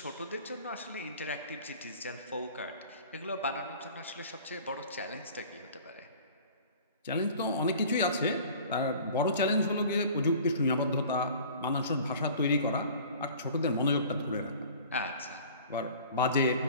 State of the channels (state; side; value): inverted; both; correlation -0.45